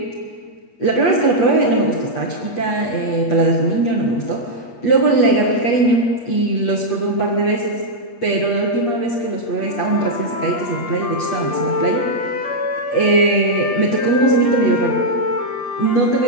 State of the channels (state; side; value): late; right; 8.3 ms